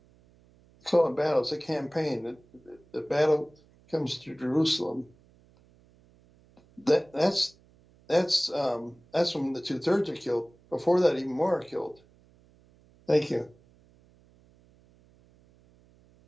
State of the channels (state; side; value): noise; right; hum, 30 dB below the sound